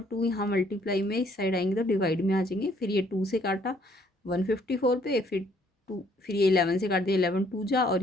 2 यहाँ मल्टीप्लाई में इस साइड आएंगे तो डिवाइड में आ जाएंगे। फिर ये 2 से काटा 154 पे, फिर ये 11 से काट दिया, 11 2 जा, और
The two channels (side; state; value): both; normal; correlation 0.64